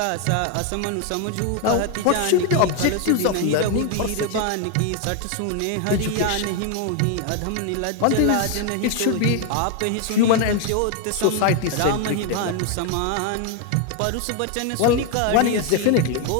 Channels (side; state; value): both; different; correlation 0.01